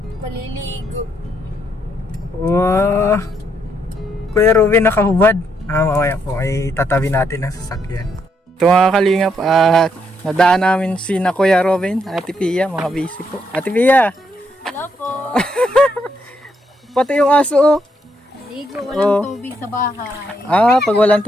Maliligo. Wow! Kuya Robin, nakahubad. Mamaya po, ay tatabi natin ang sasakyan. Ito mga kalingap, at nadaan namin si na Kuya Robin, Ate Pia, mga busy po. Ate Pia! Hello po. Pati yung aso, oh. Ligo, walang tubig sa bahay. Pag walang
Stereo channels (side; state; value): both; normal; correlation 0.76